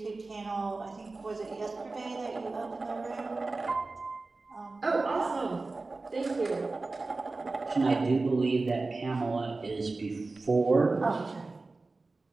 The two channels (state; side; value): quieter; left; 3.5 dB